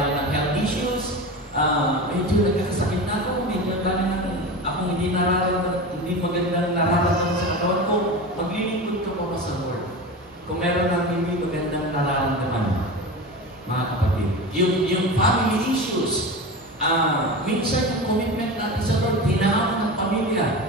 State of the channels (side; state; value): both; normal; correlation 0.27